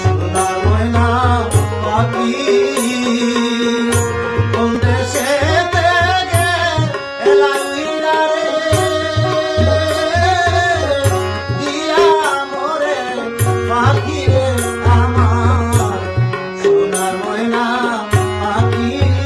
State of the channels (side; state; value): both; identical; correlation 1.00